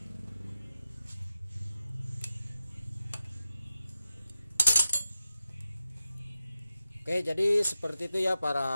Oke, jadi seperti itu ya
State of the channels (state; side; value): inverted; both; correlation -0.91